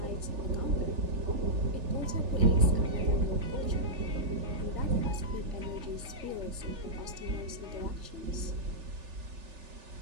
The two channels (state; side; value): late; left; 3.4 ms